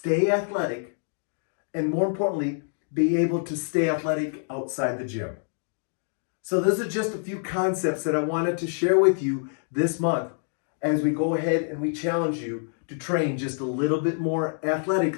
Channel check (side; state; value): right; silent; digital silence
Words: athletic, and more importantly, be able to stay athletic outside the gym. So those are just a few concepts that I wanted to share with you this month as we go ahead and we challenge you to train just a little bit more